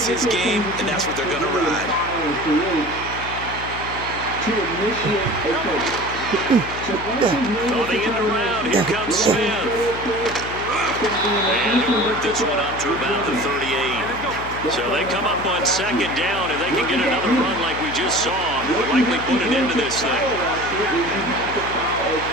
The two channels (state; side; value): noise; left; hum, 12 dB below the sound